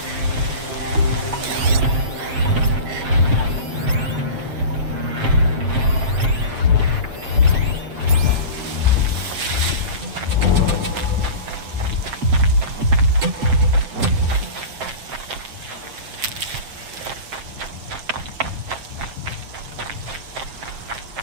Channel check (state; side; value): late; left; 7.6 ms